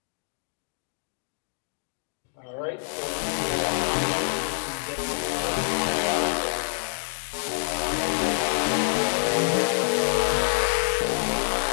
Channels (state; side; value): silent; right; digital silence